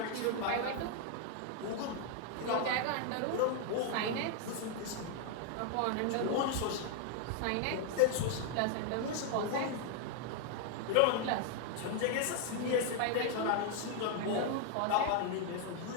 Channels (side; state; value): both; different; correlation 0.00